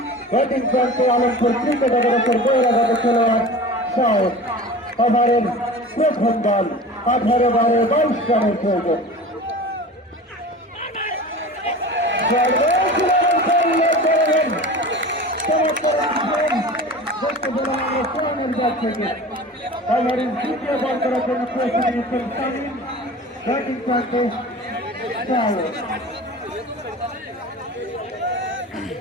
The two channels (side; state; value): both; normal; correlation 0.36